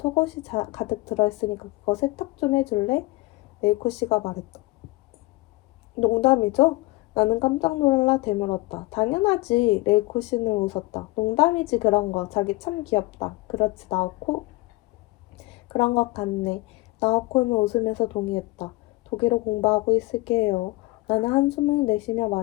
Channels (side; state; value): right; quieter; 21.4 dB